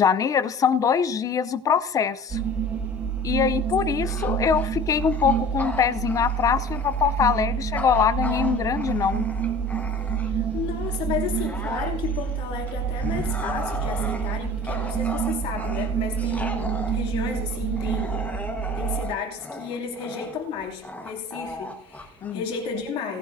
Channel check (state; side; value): normal; both; correlation 0.43